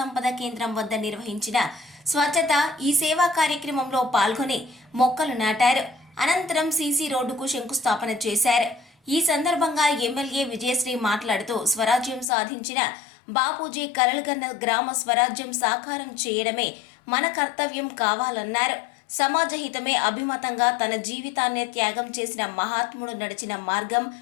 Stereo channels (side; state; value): right; drops out; at 12.2 s